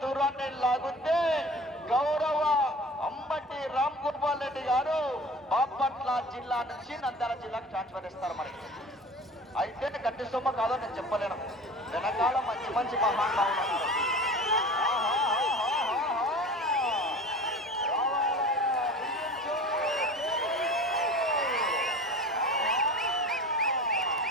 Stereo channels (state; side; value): normal; both; correlation 0.38